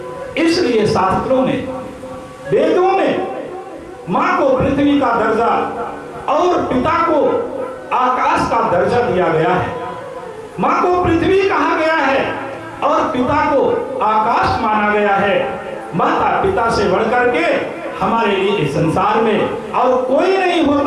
इसलिए शास्त्रों में, वेदों में मां को पृथ्वी का दर्जा और पिता को आकाश का दर्जा दिया गया है। माँ को पृथ्वी कहा गया है और पिता को आकाश माना गया है। माता पिता से बढ़कर के हमारे लिए इस संसार में और कोई नहीं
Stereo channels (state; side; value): identical; both; correlation 1.00